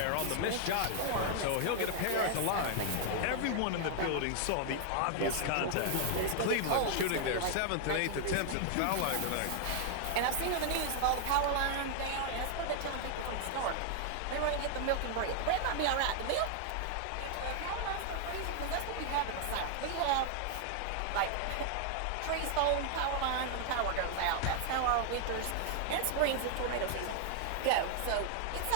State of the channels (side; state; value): both; different; correlation 0.00